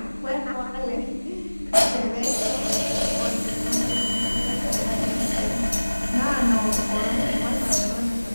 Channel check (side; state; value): both; inverted; correlation -1.00